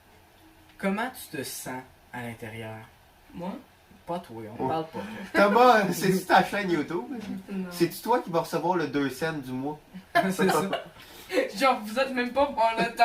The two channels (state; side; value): identical; both; correlation 1.00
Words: Comment tu te sens à l'intérieur? Moi? Pas toi, on Oh. parle pas. Thomas, c'est-tu ta chaîne YouTube? Non. C'est-tu toi qui vas recevoir le 2 cents du mois? C'est ça. Genre, vous êtes même pas pour le